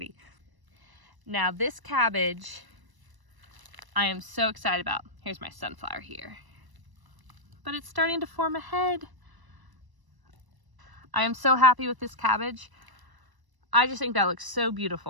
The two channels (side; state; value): left; late; 1.0 ms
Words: Now this cabbage, I am so excited about. Here's my sunflower here. But it's starting to form a head. I am so happy with this cabbage. I just think that looks so